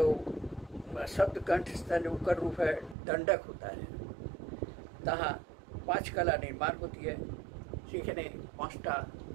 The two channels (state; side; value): drops out; left; at 3.0 s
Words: शब्द कंठ स्थान उकर रूप है, दंडक होता है। তাহা पांच कला निर्माण होती है। সেখানে পাঁচটা